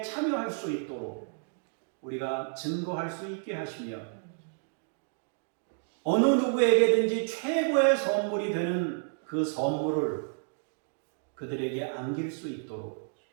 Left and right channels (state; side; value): silent; left; 57 dB below the other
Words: 참여할 수 있도록 우리가 증거할 수 있게 하시며 어느 누구에게든지 최고의 선물이 되는 그 선물을 그들에게 안길 수 있도록